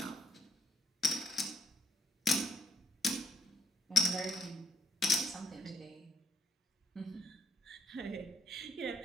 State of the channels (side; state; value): both; normal; correlation 0.71